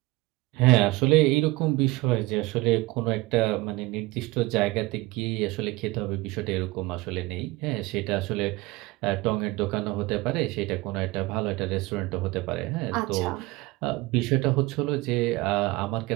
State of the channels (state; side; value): quieter; left; 21.0 dB